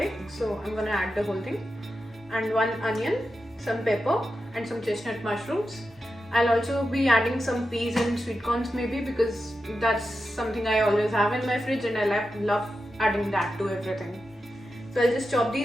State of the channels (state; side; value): normal; both; correlation 0.90